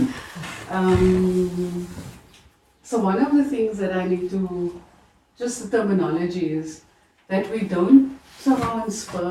So one of the things that I need to, just the terminology is that we don't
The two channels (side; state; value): both; identical; correlation 1.00